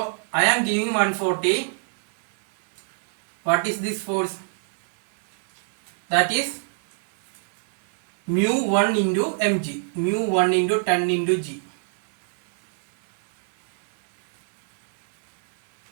I am giving 140. What is this force? That is mu 1 into mg, mu 1 into 10 into g.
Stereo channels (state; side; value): silent; left; 59 dB below the other